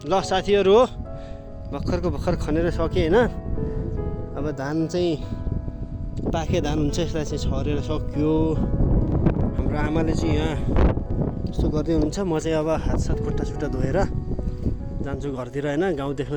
ल साथीहरू हो, भर्खरको भर्खर खनेर सकेँ होइन। अब धान चाहिँ पाके धान हुन्छ, यसलाई चाहिँ छरेर सक्यो। हाम्रो आमाले चाहिँ यहाँ यस्तो गर्दै हुनुहुन्छ। म चाहिँ अब हात सात खुट्टा सुट्टा धोएर जान्छु घरतिर होइन। गाउँ देख्न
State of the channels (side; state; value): both; identical; correlation 1.00